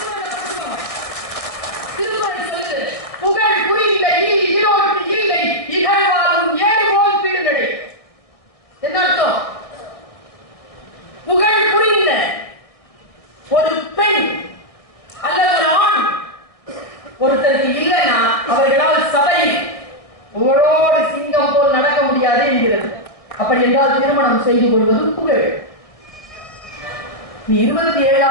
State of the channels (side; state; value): right; late; 1.6 ms